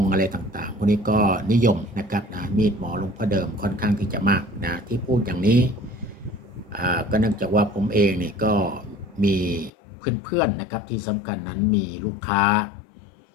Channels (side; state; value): right; drops out; at 9.7 s